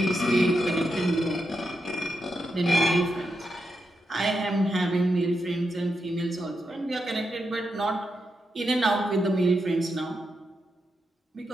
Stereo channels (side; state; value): both; normal; correlation 0.85